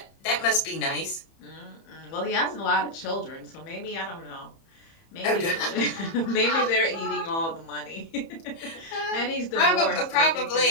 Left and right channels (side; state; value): right; late; 30 ms